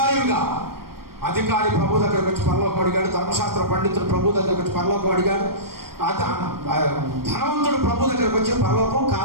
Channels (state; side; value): late; left; 0.93 ms